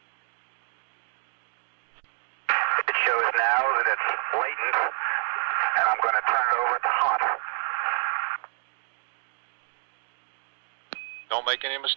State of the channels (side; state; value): left; silent; digital silence